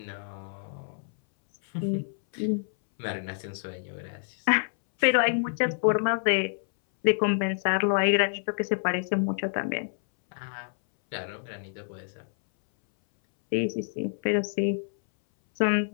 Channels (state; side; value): silent; right; 60 dB below the other